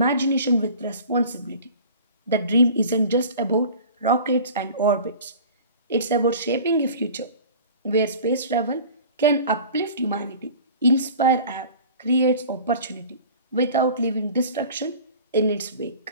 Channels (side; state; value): both; inverted; correlation -0.42